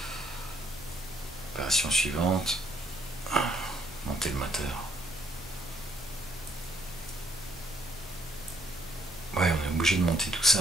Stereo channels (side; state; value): both; normal; correlation 0.69